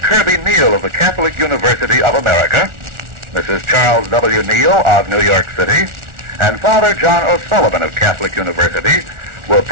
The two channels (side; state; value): left; late; 1.4 ms